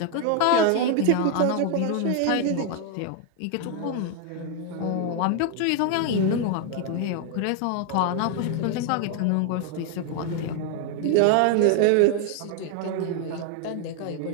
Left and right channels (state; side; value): different; both; correlation 0.00